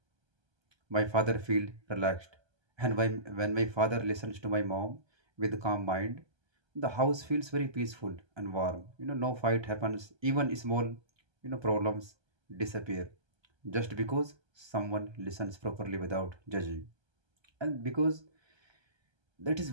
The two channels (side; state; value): left; late; 1.3 ms